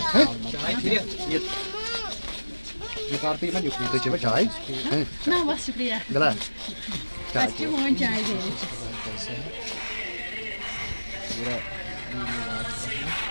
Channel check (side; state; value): both; inverted; correlation -1.00